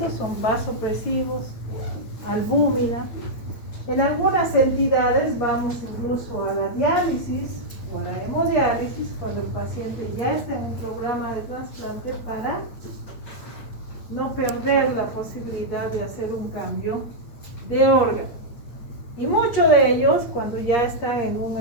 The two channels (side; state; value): right; late; 8.8 ms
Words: son vasopresivos, albúmina. En algunas entidades vamos incluso a la diálisis o la hemodiálisis cuando el paciente ya está en un programa de trasplante para no perder la posibilidad de hacer un cambio de órgano. Y muchos de ellos, cuando ya están en un